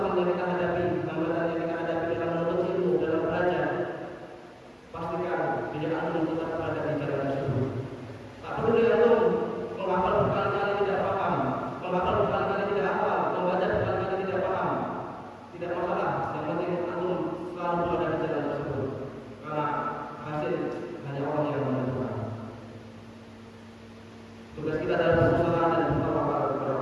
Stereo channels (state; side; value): identical; both; correlation 1.00